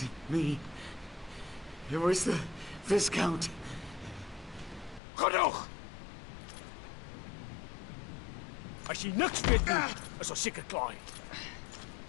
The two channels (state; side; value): drops out; right; at 5.0 s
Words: me. It was the Viscount. Genoeg! As jy niks weet nie, is ons seker klaar.